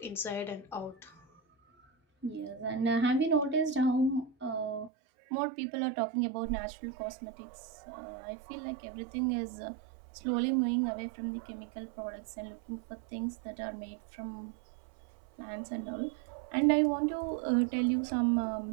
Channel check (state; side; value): drops out; left; at 4.9 s